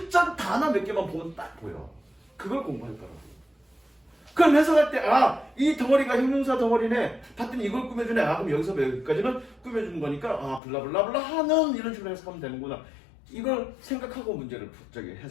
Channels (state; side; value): drops out; right; at 10.6 s